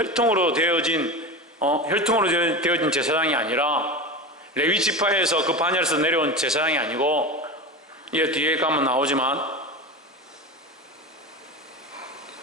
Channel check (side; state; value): both; normal; correlation 0.25